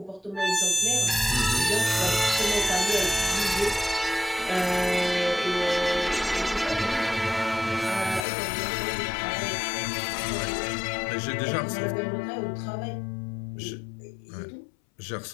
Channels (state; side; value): drops out; right; at 8.2 s